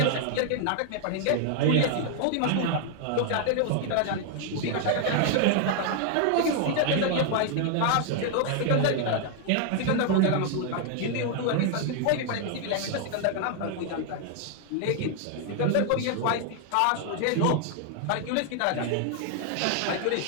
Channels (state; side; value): different; both; correlation 0.00